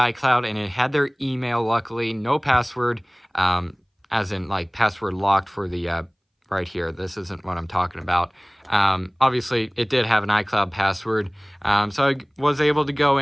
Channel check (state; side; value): identical; both; correlation 1.00